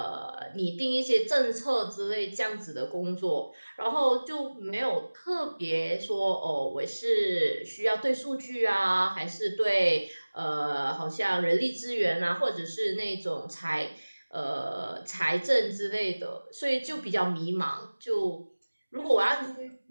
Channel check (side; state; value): both; inverted; correlation -1.00